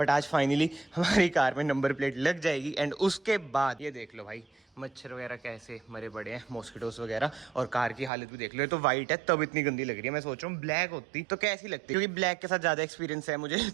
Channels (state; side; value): drops out; left; at 8.1 s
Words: आज फाइनली हमारी कार में नंबर प्लेट लग जाएगी। एंड उसके बाद ये देख लो भाई, मच्छर वगैरह कैसे मरे पड़े हैं, मॉस्किटोस वगैरह, और कार की हालत भी देख लो। ये तो वाइट है तब इतनी गंदी लग रही है। मैं सोच रहा हूँ ब्लैक होती तो कैसी लगती, क्योंकि ब्लैक के साथ ज़्यादा एक्सपीरियंस है मुझे